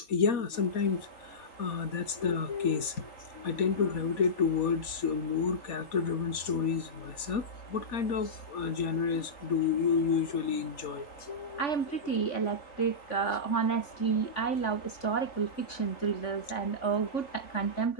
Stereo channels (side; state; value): right; late; 4.2 ms